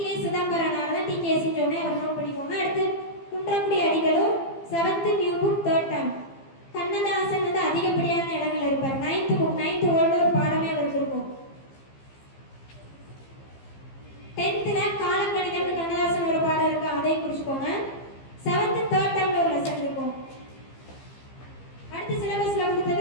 Chidambaranar தான் டிகேசின்னு சொன்னேன், அவர் நோட் பண்ணிக்கோங்க. அடுத்து குன்றக்குடி அடிகளும் 7th new book 3rd term. Kannadasan வந்து அதிகப்படியான இடங்கள் இருப்பார். 9th புக் 9th ஓல்டு ஒரு பாடமே அவருக்கு இருக்கும். 10th காலக்கணிதம் கண்ணதாசன் ஒரு பாடம் இருக்கு, அதையும் குறிச்சுக்கோங்க. 7th 3rd termல ஒரு லெசன் இருக்கும். அடுத்து சிலபஸ்ல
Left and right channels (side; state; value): right; late; 15 ms